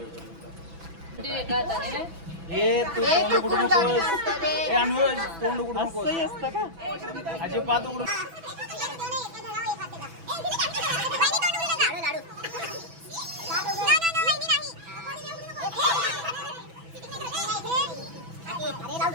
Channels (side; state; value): left; late; 6.0 ms